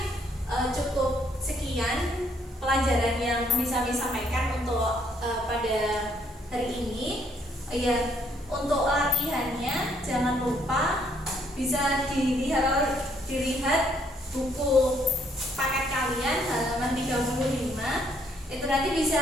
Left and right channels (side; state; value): both; normal; correlation 0.68